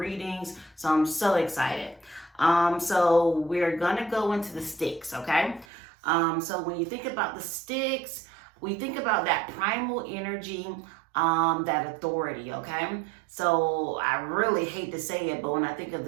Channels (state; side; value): drops out; left; at 5.7 s